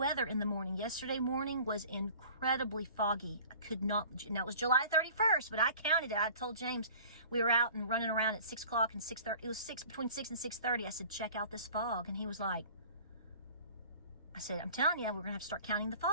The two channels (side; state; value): both; inverted; correlation -0.46